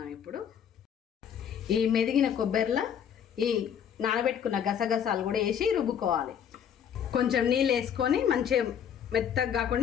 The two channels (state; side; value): quieter; right; 8.5 dB